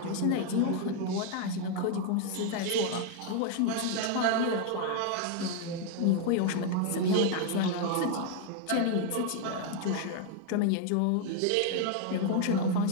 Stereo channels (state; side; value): different; both; correlation 0.00